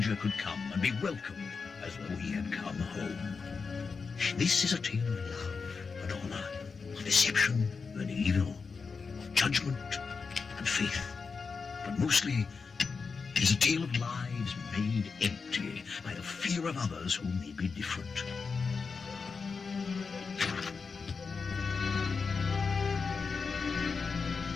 could come and be welcomed as though he had come home. This is a tale of love and honor, of deception and evil, of judgment and faith, but mostly it is a tale of lives made empty by the fear of others who may be different.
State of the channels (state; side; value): quieter; right; 5.0 dB